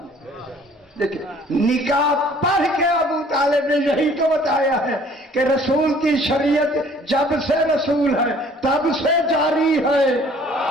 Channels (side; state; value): both; normal; correlation 0.55